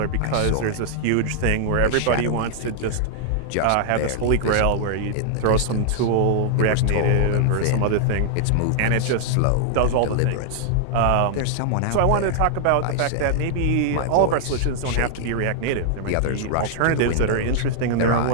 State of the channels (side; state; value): both; different; correlation -0.01